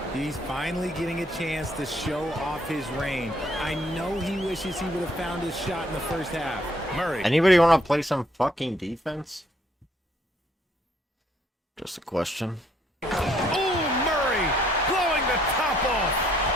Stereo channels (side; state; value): both; normal; correlation 0.67